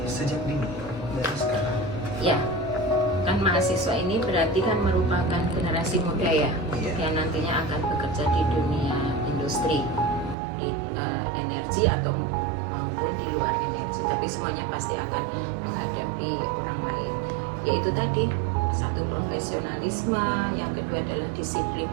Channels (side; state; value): left; drops out; at 10.4 s